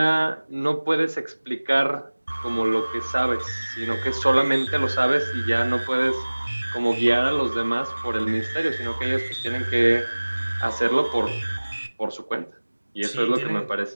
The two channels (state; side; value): inverted; both; correlation -1.00